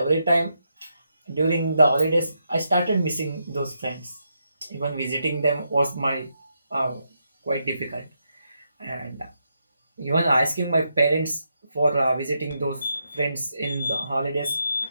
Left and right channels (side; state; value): both; inverted; correlation -0.82